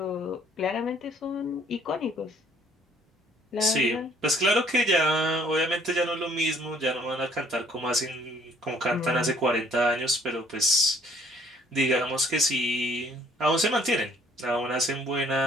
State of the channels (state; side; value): normal; both; correlation 0.60